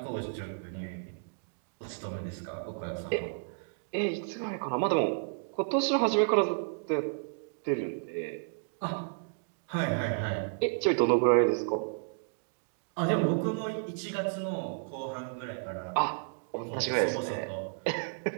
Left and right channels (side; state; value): left; silent; digital silence